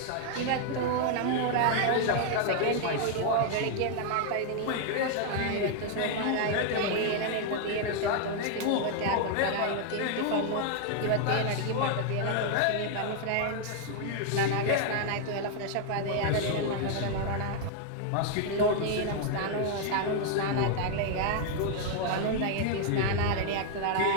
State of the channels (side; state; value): both; different; correlation 0.00